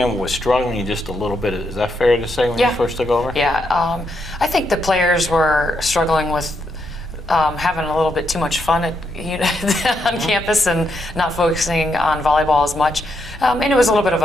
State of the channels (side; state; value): left; noise; rumble, 17 dB below the sound